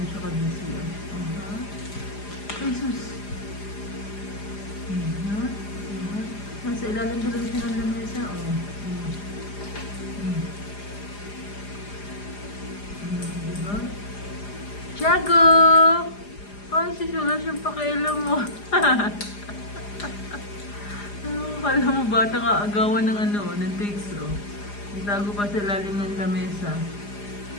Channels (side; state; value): right; late; 4.9 ms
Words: siya ka-busy. Ay, sus. Nasa ilalim talaga siya ng lamesa. Diba? Tiago! Ay, sus, wala siyang pakialam mo. Kala mo bata nga agawan ng ng takes, Itago pa sa ilalim ng lamesa.